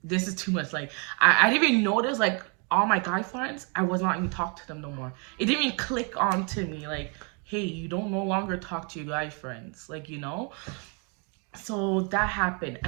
this is too much. Like, I didn't even notice, like, all my guy friends, I was not even talk to them no more. It didn't even click onto me, like, hey, you don't no longer talk to your guy friends, like, So that happened,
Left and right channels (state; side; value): quieter; left; 35.6 dB